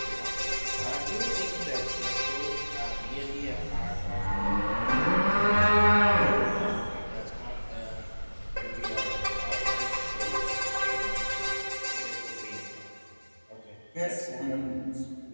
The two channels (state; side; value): inverted; both; correlation -1.00